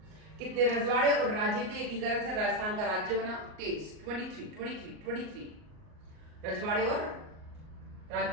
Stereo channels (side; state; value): left; late; 38 ms